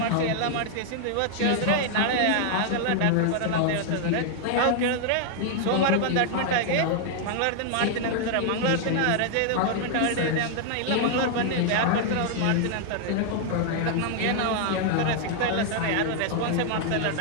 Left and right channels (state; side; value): different; both; correlation 0.00